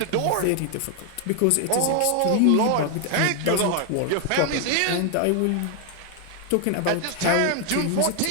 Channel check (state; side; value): different; both; correlation 0.00